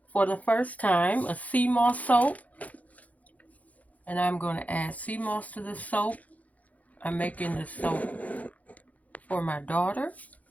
for the first time, a sea moss soap. And I'm going to add sea moss to the soap. I'm making this soap for my daughter.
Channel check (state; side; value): late; right; 0.072 ms